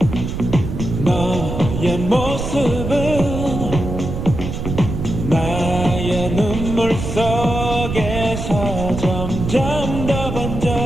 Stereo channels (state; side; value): noise; right; rumble, 5 dB below the sound